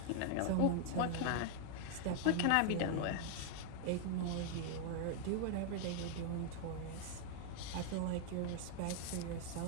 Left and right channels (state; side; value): different; both; correlation 0.00